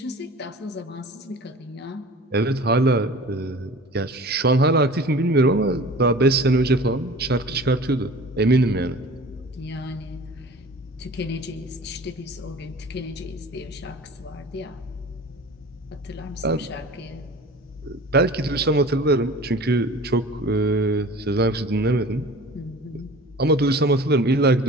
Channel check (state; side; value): normal; both; correlation 0.42